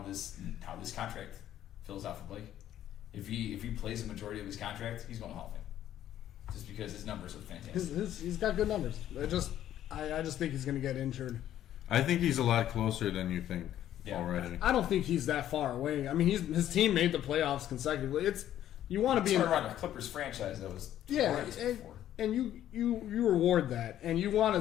this contract fills out for Blake. If he plays the majority of his contract, he's going to Hall of Fame. Just because his numbers are fantastic. He's got good numbers. I just think he's going to get injured. I think he's a lot closer than you think Yeah. already. I don't think he's that far away. I mean, his team made the playoffs consecutively. You want to be Turn around a Clippers franchise that was twice before. and you reward that, and you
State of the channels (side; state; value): right; quieter; 11.8 dB